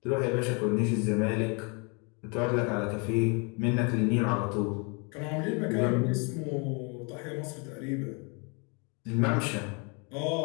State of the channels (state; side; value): quieter; right; 33.2 dB